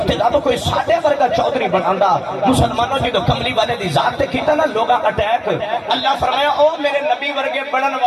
تے رب کوئی ساڈے ورگا چودھری بناندا. مسلمانوں جدوں کملی والے دی ذات تے کیتا نا لوگاں اٹیک, اللہ فرمایا او میرے نبی ورگے بنن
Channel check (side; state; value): both; identical; correlation 1.00